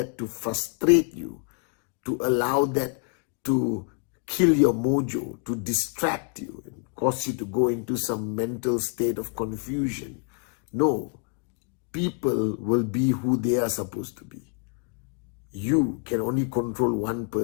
to frustrate you, to allow that to kill your mojo, to distract you and cause you to go into some mental state of confusion. No, people will be who they are supposed to be. You can only control one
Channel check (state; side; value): quieter; right; 38.9 dB